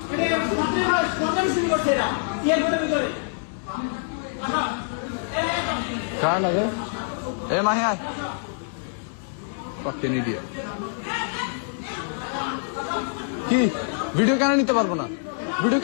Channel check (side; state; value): right; silent; 62 dB below the other